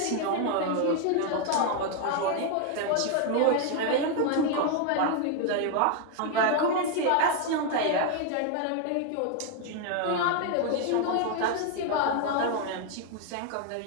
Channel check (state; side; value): different; both; correlation 0.01